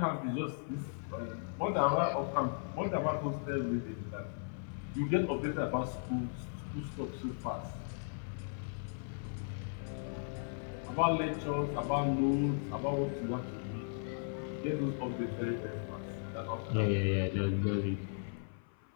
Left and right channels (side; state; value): right; silent; 53 dB below the other